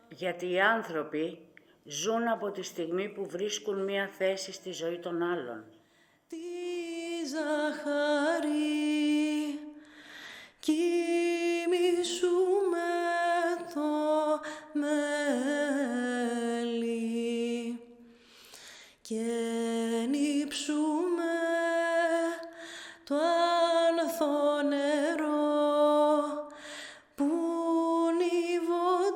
Γιατί οι άνθρωποι ζουν από τη στιγμή που βρίσκουν μία θέση στη ζωή των άλλων. Τη ζαχαρή κοιμήσου με το μέλι και νύψουμε το άνθο νερό που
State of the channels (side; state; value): both; identical; correlation 1.00